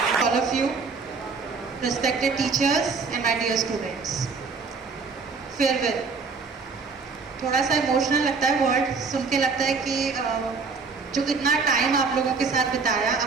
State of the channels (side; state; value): left; quieter; 4.8 dB